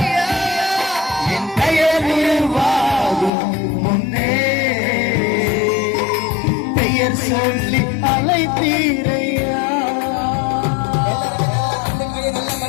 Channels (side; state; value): right; drops out; at 3.3 s